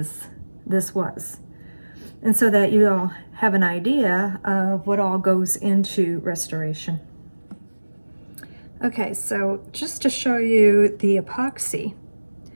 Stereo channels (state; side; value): inverted; both; correlation -1.00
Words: this was. And so that you all have an idea of what all goes into restoration. Okay, so just to show you the epoxy,